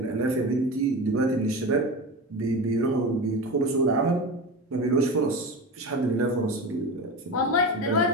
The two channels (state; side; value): normal; both; correlation 0.26